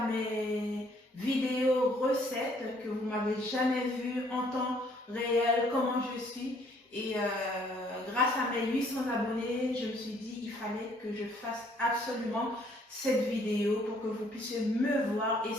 mes vidéos recettes que vous m'avez jamais vu en temps réel, comment je suis. Et grâce à mes 800 abonnés, je me suis dit il fallait que je fasse absolument cette vidéo pour que vous puissiez me voir et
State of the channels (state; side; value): normal; both; correlation 0.63